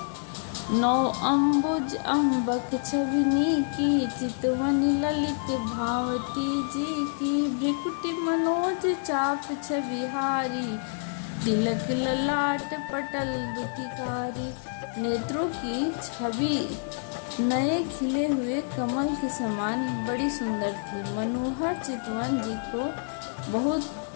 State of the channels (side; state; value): right; silent; digital silence